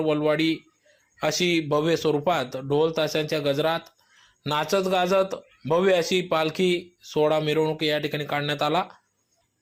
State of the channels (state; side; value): identical; both; correlation 1.00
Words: अशी भव्य स्वरूपात ढोल ताशांच्या गजरात नाचत गाजत भव्य अशी पालखी सोहळा मिरवणूक या ठिकाणी काढण्यात आला।